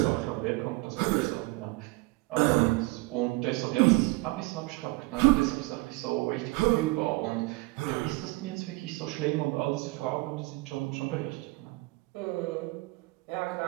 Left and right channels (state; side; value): quieter; left; 23.1 dB